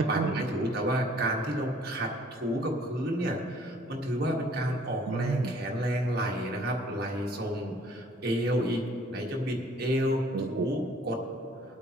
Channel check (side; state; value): both; normal; correlation 0.57